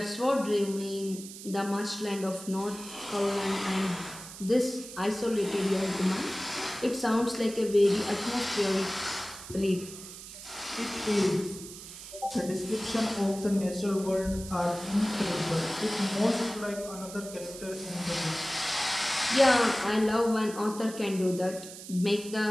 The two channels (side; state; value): right; noise; hiss, 13 dB below the sound